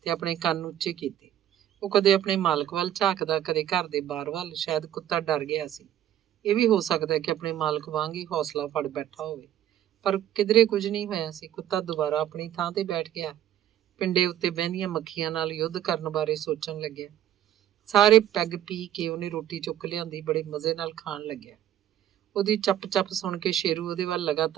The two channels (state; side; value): quieter; left; 11.6 dB